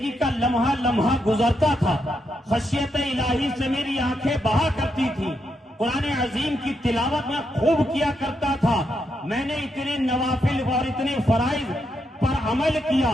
کا لمحہ لمحہ گزرتا تھا، خشیت الہی سے میری آنکھیں بہا کرتی تھی، قرآن عظیم کی تلاوت میں خوب کیا کرتا تھا، میں نے اتنے نوافل اور اتنے فرائض پر عمل کیا،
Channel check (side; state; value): both; normal; correlation 0.81